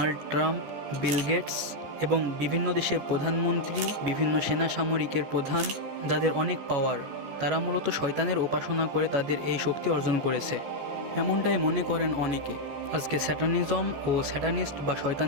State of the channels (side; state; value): left; late; 15 ms